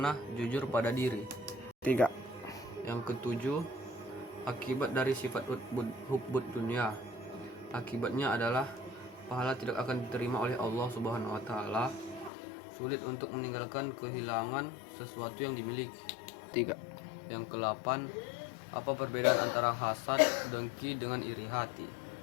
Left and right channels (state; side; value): drops out; right; at 12.3 s